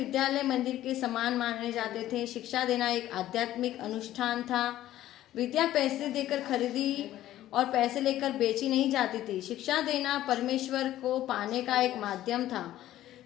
मंदिर के समान माने जाते थे। शिक्षा देना एक आध्यात्मिक अनुष्ठान था। विद्या पैसे देकर खरीदी और पैसे लेकर बेची नहीं जाती थी। शिक्षा देना परमेश्वर को पाने का एक माध्यम था।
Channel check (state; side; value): quieter; right; 13.7 dB